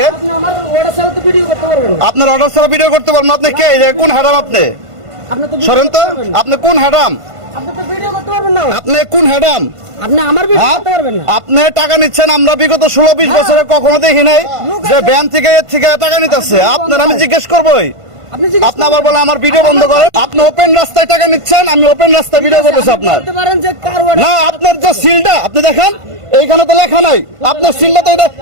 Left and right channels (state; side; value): late; left; 1.5 ms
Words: আপনার অর্ডার ছাড়া ভিডিও করতে পারবেন? আপনি কে? কোন হ্যাডাম আপনি? সরেন তো, আপনি কোন হ্যাডাম? আপনি কোন হ্যাডাম? আপনি টাকা নিচ্ছেন, আমরা বিগত 16-20 বছরে কখনো দেখি নাই যে ব্যাংক থেকে এর থেকে টাকা নিতেছে। আপনার আমি জিজ্ঞেস করবোই, আপনি আবার বলেন আমার ভিডিও বন্ধ করেন। আপনি ওপেন রাস্তায় টাকা নিচ্ছেন, আমি ওপেন রাস্তায় ভিডিও করতেছি আপনার না। আপনার যে সিলটা আপনি দেখেন, এইখানে তো লেখা নাই আপনার সিলটা তো এটা।